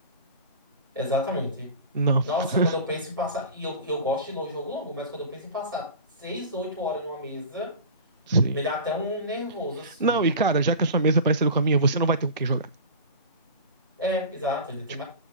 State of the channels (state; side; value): inverted; both; correlation -0.34